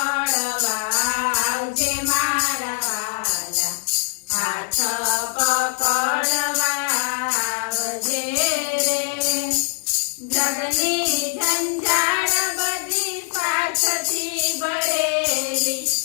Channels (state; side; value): silent; right; 62 dB below the other